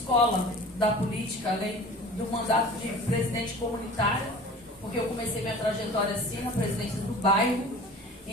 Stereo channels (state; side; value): normal; both; correlation 0.41